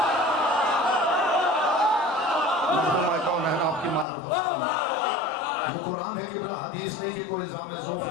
आपकी मारिफत ये कुरान है किबला, हदीस नहीं कि कोई इल्ज़ाम ज़ौफ़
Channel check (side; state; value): right; drops out; at 4.0 s